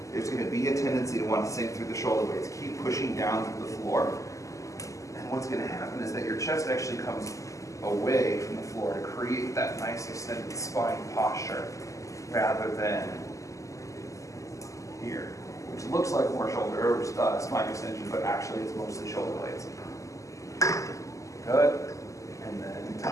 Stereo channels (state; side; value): late; right; 0.16 ms